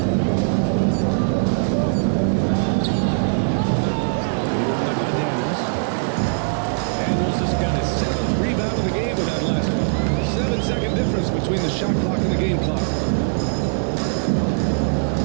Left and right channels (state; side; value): silent; left; 61 dB below the other